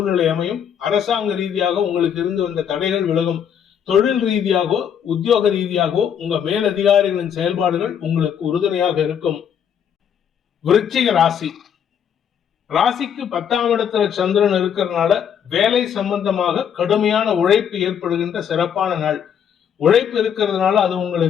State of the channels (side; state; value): right; quieter; 8.4 dB